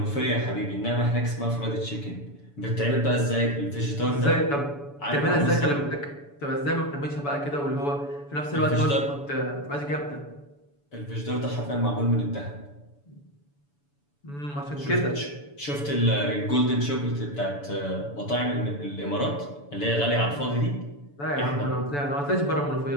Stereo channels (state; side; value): late; right; 7.0 ms